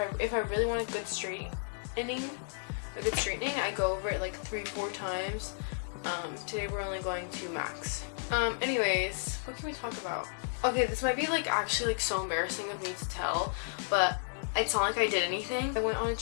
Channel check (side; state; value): right; silent; 56 dB below the other